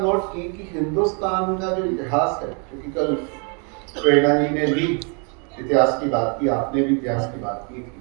नोट की कि हिंदुस्तान का जो इतिहास है, क्योंकि कल प्रेरणा जी ने भी इतिहास की बात की, आपने भी इतिहास की बात की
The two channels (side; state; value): left; quieter; 37.2 dB